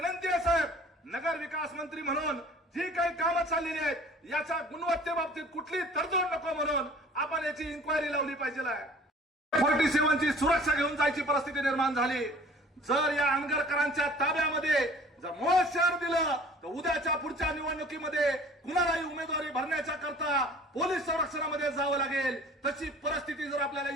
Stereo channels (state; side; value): normal; both; correlation 0.49